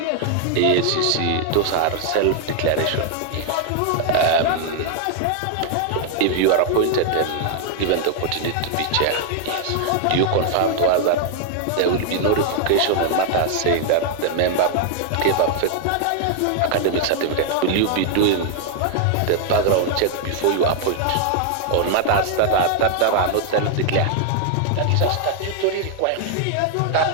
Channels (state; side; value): different; both; correlation 0.00